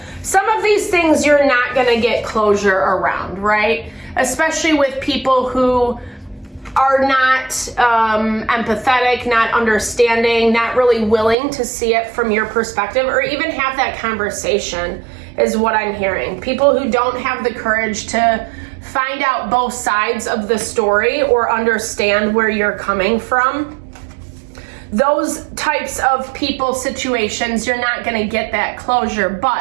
Some of these things you're not going to get closure around, right? Especially with people who are not empathetic, not understanding, not really willing to see it from your perspective or even have that conversation is what I'm hearing. People who don't have the courage to find out both sides of the story or understand where you're coming from. Those types of people, situations, you're not going to get that closure,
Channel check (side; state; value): left; drops out; at 11.4 s